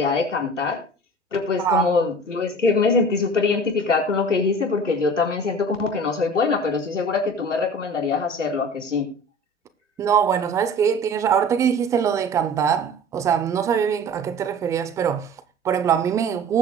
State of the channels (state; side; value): normal; both; correlation 0.41